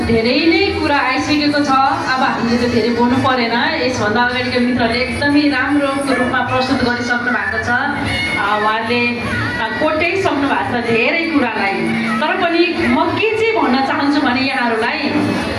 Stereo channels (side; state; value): both; identical; correlation 1.00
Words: नै कुरा आइसकेको छ। अब हामीले त धेरै बोल्नु परेन। यसभन्दा अगाडिको मित्रले एकदमै राम्रो रूपमा प्रस्तुत गरिसक्नु भएको छ। उहाँले कोट्याइसक्नु भएको छ धेरै कुरालाई। तर पनि म के चाहिँ भन्न चाहन्छु भने यहाँहरूलाई